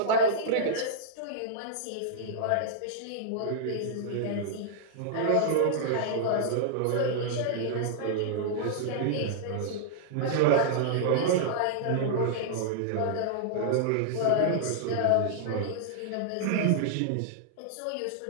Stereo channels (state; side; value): different; both; correlation -0.01